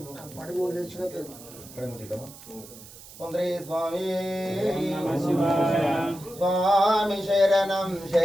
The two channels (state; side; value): noise; right; hiss, 18 dB below the sound